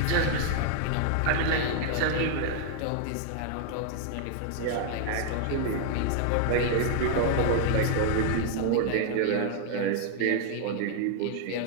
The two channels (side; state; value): both; different; correlation 0.00